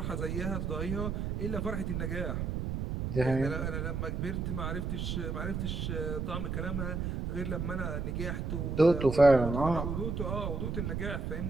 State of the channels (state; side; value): noise; right; rumble, 2 dB below the sound